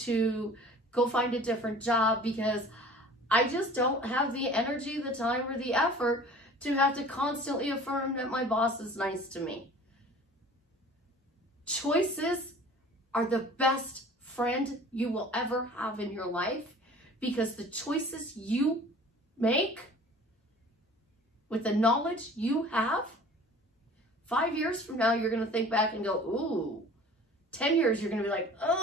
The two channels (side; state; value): both; normal; correlation 0.46